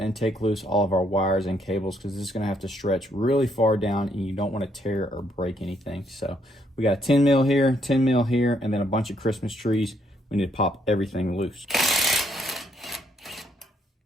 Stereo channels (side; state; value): both; normal; correlation 0.72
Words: take loose all of our wires and cables because this is going to have to stretch really far down and you don't want to tear or break anything. So we got 10 mil here, 10 mil here, and then a bunch of Christmas trees. We need to pop everything loose.